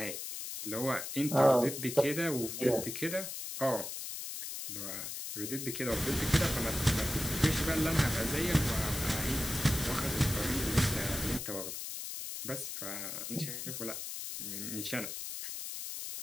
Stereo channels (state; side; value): noise; left; hiss, 6 dB below the sound